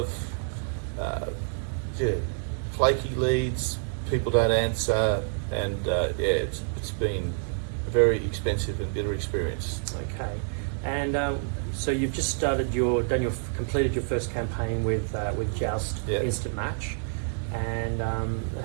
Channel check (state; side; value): silent; left; digital silence